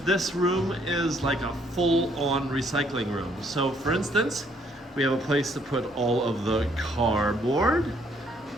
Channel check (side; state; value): both; normal; correlation 0.67